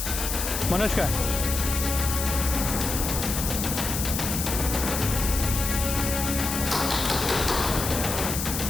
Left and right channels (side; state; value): left; noise; hiss, 3 dB below the sound